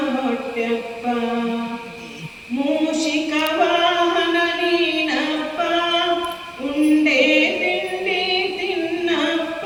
ಹೊಟ್ಟೆಪ್ಪ, ಮೂಷಿಕ ವಾಹನ ನೀನಪ್ಪ, ಉಂಡೆ ತಿಂಡಿ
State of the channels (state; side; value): identical; both; correlation 1.00